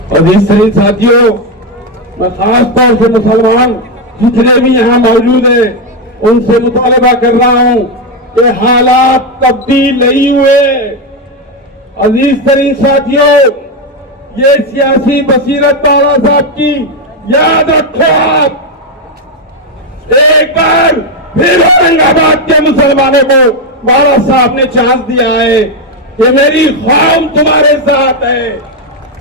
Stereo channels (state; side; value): normal; both; correlation 0.06